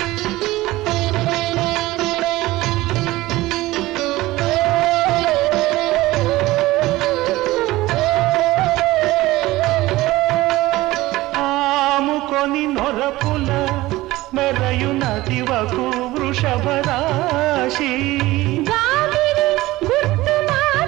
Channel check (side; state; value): left; quieter; 18.3 dB